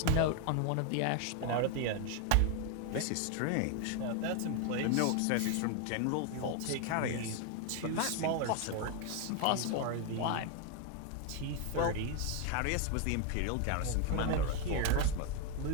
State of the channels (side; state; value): both; different; correlation 0.01